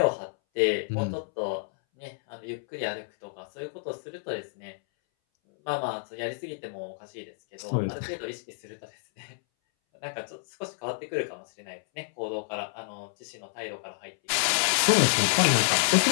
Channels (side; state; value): right; silent; 59 dB below the other